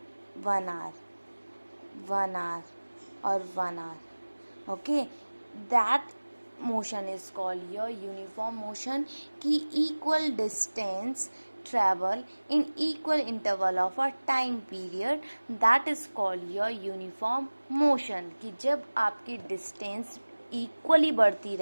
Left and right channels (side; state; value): both; inverted; correlation -1.00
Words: 1 hour, 1 hour और 1 hour. Okay, that motion is called your uniform motion. कि equal distance travel in equal interval of a time period, that is called your uniform motion. कि जब आपकी distance equally बढ़ती